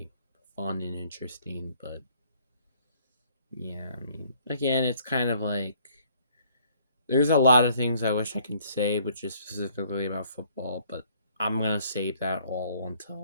fun and interesting. But yeah, I mean, again, it's kind of like there's a lot of things I wish I could say, which is specifically about football, but I'm gonna save that all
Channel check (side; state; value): both; inverted; correlation -0.62